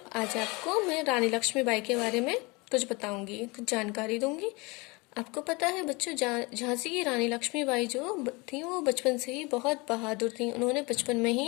आज आपको मैं रानी लक्ष्मीबाई के बारे में कुछ बताऊंगी, कुछ जानकारी दूंगी। आपको पता है बच्चों, झांसी की रानी लक्ष्मीबाई जो थी वो बचपन से ही बहुत बहादुर थी। उन्होंने बचपन में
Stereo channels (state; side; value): quieter; right; 26.0 dB